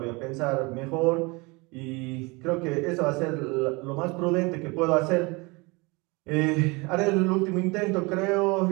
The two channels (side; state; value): left; quieter; 26.4 dB